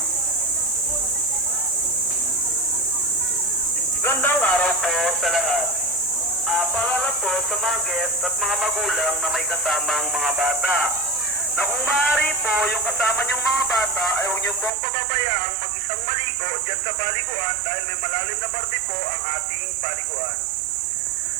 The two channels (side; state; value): left; drops out; at 14.7 s